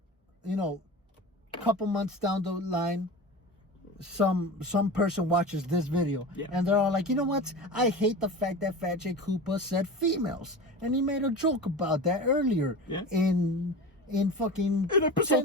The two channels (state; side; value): normal; both; correlation 0.31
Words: you know, a couple months down the line, some person watches this video and they're all like, you know what? I hate the fact that Phat Koopa said females, and he made a joke about that earlier in fucking in